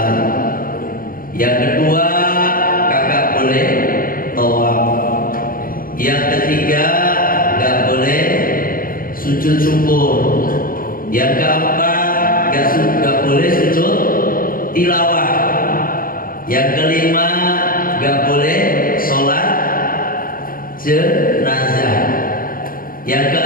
yang kedua kagak boleh tawaf, yang ketiga gak boleh sujud syukur, yang keempat gak boleh sujud tilawah, yang kelima gak boleh sholat jenazah, yang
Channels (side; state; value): right; late; 0.41 ms